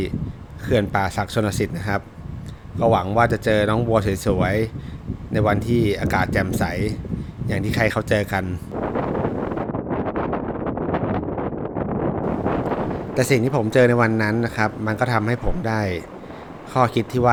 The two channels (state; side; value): identical; both; correlation 1.00